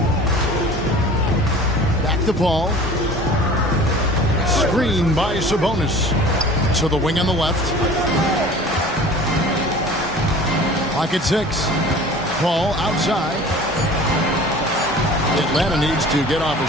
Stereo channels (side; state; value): both; normal; correlation 0.43